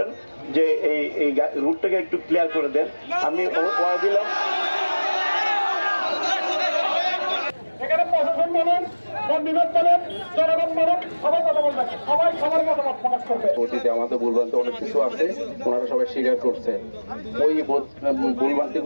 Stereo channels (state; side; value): inverted; both; correlation -1.00